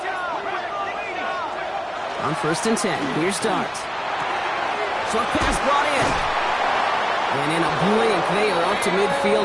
On 1st and 10, here's Dart. Short pass brought in. And in a blink, they are up to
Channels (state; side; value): identical; both; correlation 1.00